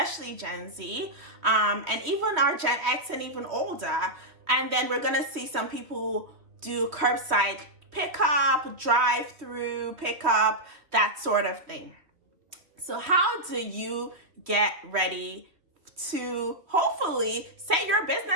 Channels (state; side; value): late; left; 3.1 ms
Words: Gen Z, and even our Gen X and even older. And then we're going to see some people do curbside pickup, drive-through pickup, that sort of thing. So how do you get ready to hopefully set your